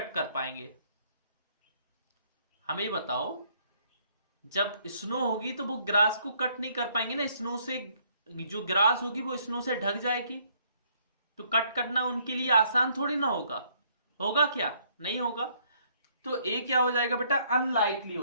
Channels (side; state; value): both; inverted; correlation -0.66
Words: कर पाएंगे? हमें बताओ। जब स्नो होगी तो वो ग्रास को कट नहीं कर पाएंगे ना, स्नो से जो ग्रास होगी वो स्नो से ढक जाएगी, तो कट करना उनके लिए आसान थोड़ी ना होगा। होगा क्या? नहीं होगा। तो ए क्या हो जाएगा बेटा? अनलाइकली